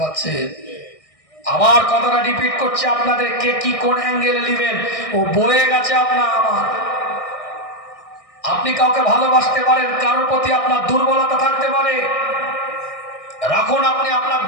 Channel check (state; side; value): late; right; 1.6 ms